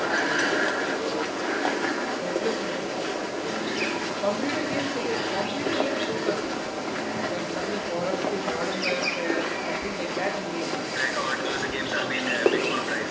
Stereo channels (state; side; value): identical; both; correlation 1.00